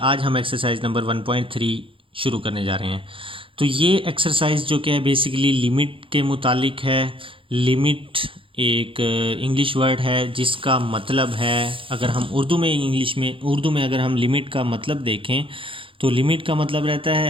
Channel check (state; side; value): late; left; 0.25 ms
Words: आज हम एक्सरसाइज नंबर 1.3 शुरू करने जा रहे हैं। तो ये एक्सरसाइज जो क्या है बेसिकली लिमिट के मुतालिक है। लिमिट एक इंग्लिश वर्ड है जिसका मतलब है, अगर हम उर्दू में अगर हम लिमिट का मतलब देखें तो लिमिट का मतलब रहता